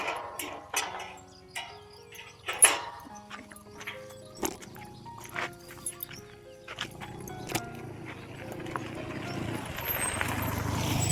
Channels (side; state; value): both; identical; correlation 1.00